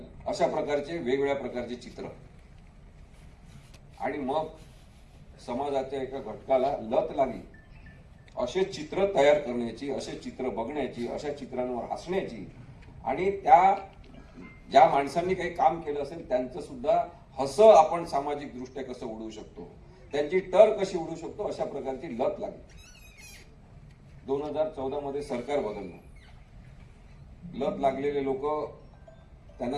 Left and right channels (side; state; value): both; identical; correlation 1.00